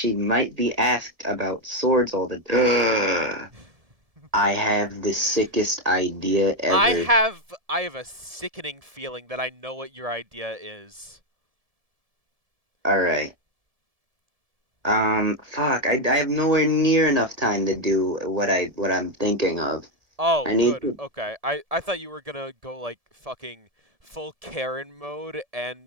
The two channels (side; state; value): left; late; 1.7 ms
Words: might be asked about swords all the time. I have the sickest idea ever. I have a sickening feeling that I know what your idea is. All right. Fuck. I have nowhere near enough time to do what I'm thinking of. Oh, I need good. to. Okay. I thought you were gonna go like fucking full Karen mode